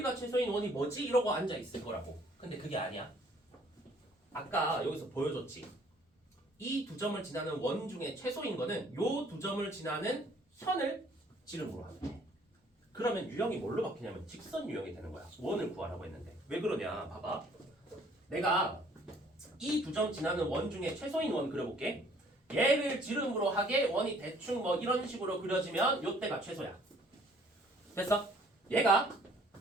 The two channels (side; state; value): both; normal; correlation 0.59